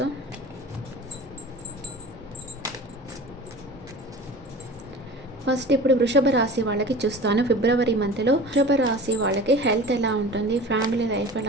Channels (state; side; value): normal; both; correlation 0.38